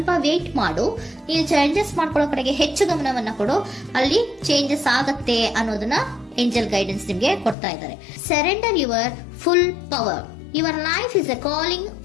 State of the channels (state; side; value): drops out; right; at 7.6 s